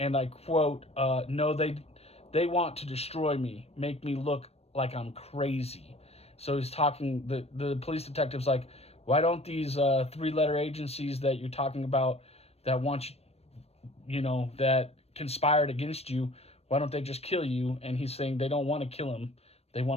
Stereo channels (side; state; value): right; late; 0.30 ms